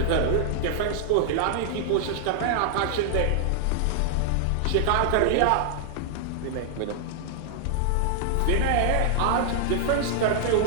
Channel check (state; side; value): different; both; correlation -0.01